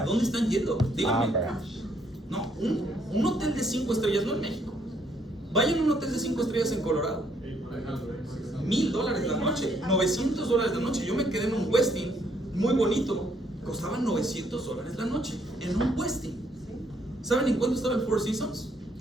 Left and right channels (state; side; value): normal; both; correlation 0.69